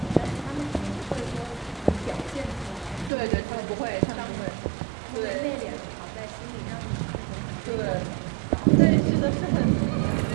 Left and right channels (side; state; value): left; drops out; at 3.1 s